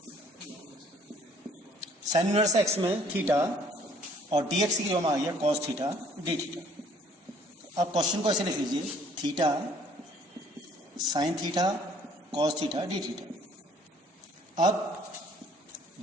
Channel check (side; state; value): both; normal; correlation 0.58